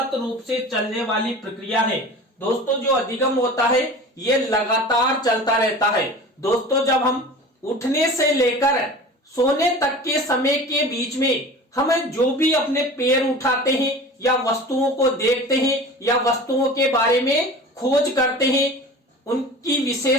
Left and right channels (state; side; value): normal; both; correlation 0.38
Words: रूप से चलने वाली प्रक्रिया है। दोस्तों, जो अधिगम होता है ये लगातार चलता रहता है। दोस्तों, जब हम उठने से लेकर सोने तक के समय के बीच में हम जो भी अपने पैर उठाते हैं या वस्तुओं को देखते हैं या वस्तुओं के बारे में खोज करते हैं, उनकी